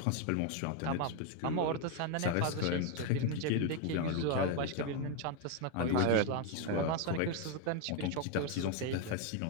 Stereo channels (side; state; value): both; different; correlation 0.01